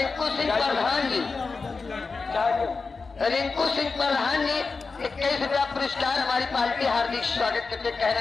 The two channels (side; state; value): right; quieter; 4.4 dB